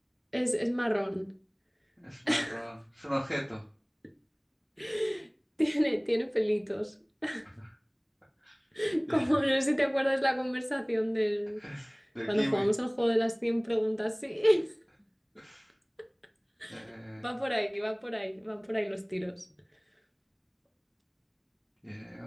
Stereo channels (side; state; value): both; identical; correlation 1.00